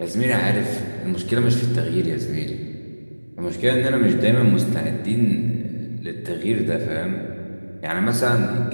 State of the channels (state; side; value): inverted; both; correlation -1.00